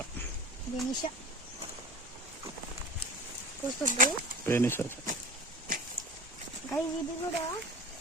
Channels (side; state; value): both; normal; correlation 0.36